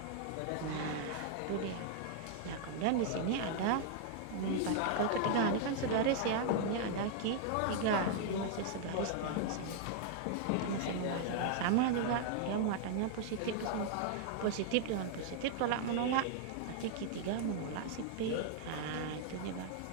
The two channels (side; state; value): both; different; correlation 0.00